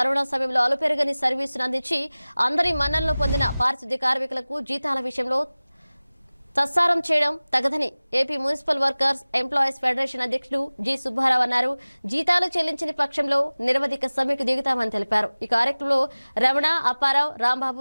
సమయంలో అలుపెరగని సర్వీసును అందించి అందరి మన్ననలు పొందిన పారిశుద్ధ్య కార్మికులకు జీతాల విషయంలో తస్సారం చేయడం తగదని AP municipal workers employees federation అధ్యక్షుడు జి సుబ్బారావు అన్నారు. జీతాలు చెల్లించని పక్షంలో నిరవధిక సమ్మెకు దిగుతామని తెలిపారు. ఈ కార్యక్రమంలో రమణ, అప్పారావు, రాంబాబు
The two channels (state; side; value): inverted; both; correlation -0.99